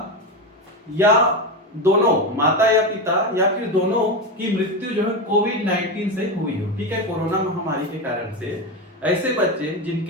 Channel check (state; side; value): normal; both; correlation 0.16